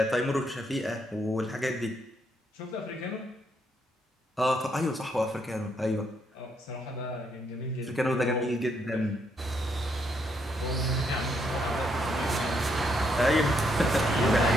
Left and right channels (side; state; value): both; normal; correlation 0.75